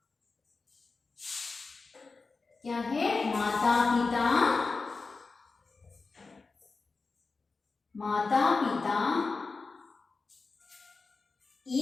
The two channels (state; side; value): quieter; right; 4.1 dB